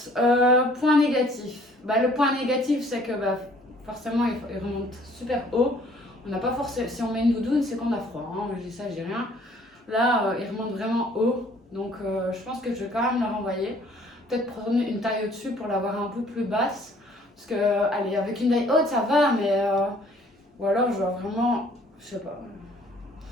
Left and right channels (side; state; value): both; normal; correlation 0.58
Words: point négatif. Le point négatif, c'est que forcément, il remonte super haut. On n'a pas forcément. Si on met une doudoune, c'est qu'on a froid. Hein. Je dis ça, je dis rien. Là, il remonte vraiment haut. Donc, je pense que je vais quand même la renvoyer. Peut-être prendre une taille au-dessus pour l'avoir un peu plus basse. Parce que, allez, avec une taille haute, ça va, mais. Ou alors, je dois vraiment. Je sais pas.